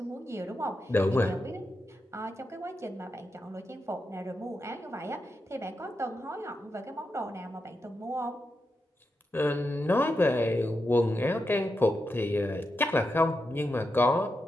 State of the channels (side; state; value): both; normal; correlation 0.87